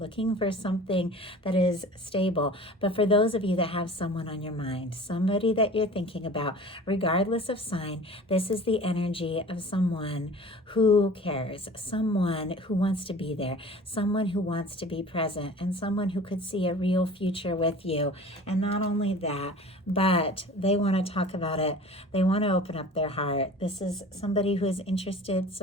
for something that is stable. But for those of you that have someone on your mind, somebody that you're thinking about, regardless of sign, this is the energy of someone who cares, someone who wants to be there, someone who wants to be present, and someone who could see a real future with you. And not only that, but they want to talk about it. They want to open up their heart. This is somebody who is interested,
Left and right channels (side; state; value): both; normal; correlation 0.42